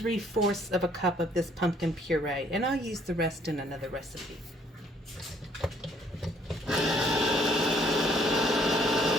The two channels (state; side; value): normal; both; correlation 0.63